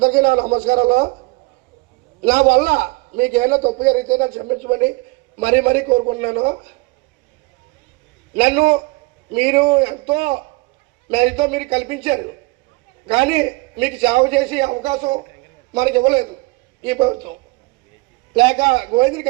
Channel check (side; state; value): left; quieter; 24.8 dB